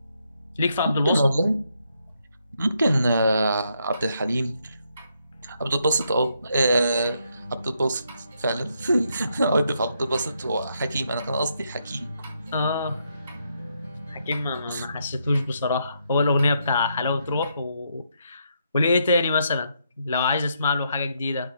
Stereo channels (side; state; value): both; inverted; correlation -0.77